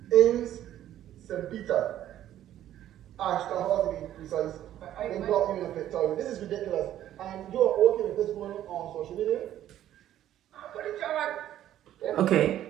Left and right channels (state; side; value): quieter; left; 12.1 dB